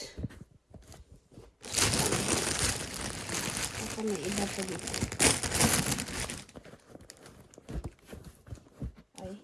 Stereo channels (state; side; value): identical; both; correlation 1.00